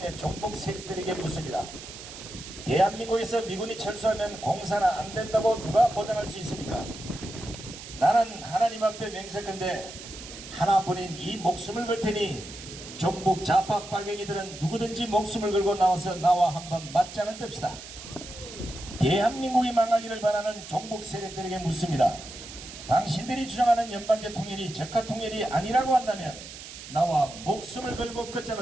내 종북 세력들에게 묻습니다. 대한민국에서 미군이 철수하면 공사나 안 된다고 누가 보장할 수 있습니까? 나는 하나님 앞에 맹세컨대 하나뿐인 이 목숨을 걸 테니 종북 좌파 빨갱이들은 누구든지 목숨을 걸고 나와서 나와 한번 맞짱을 뜹시다. 대한민국이 망하기를 바라는 종북 세력들에게 묻습니다. 당신들이 주장하는 연방제 통일이 적화 통일이 아니라고 한다면 나와 목숨을 걸고 끝장을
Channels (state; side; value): noise; right; hiss, 13 dB below the sound